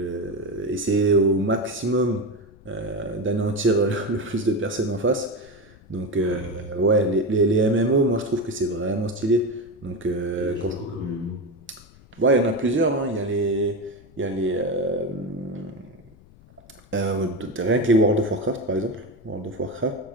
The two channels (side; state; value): left; noise; rumble, 25 dB below the sound